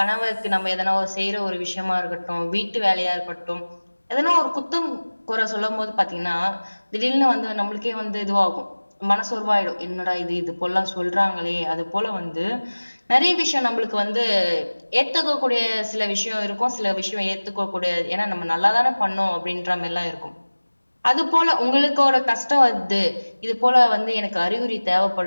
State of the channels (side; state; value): both; inverted; correlation -1.00